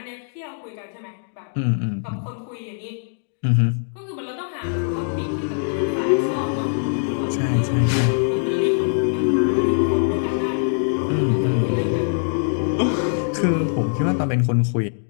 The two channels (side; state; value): right; silent; digital silence